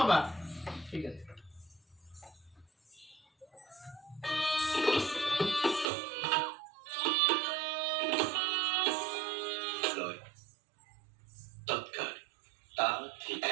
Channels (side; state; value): left; drops out; at 5.9 s